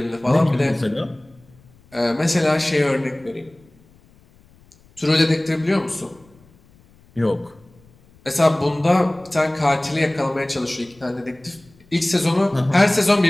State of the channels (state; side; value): noise; left; rumble, 29 dB below the sound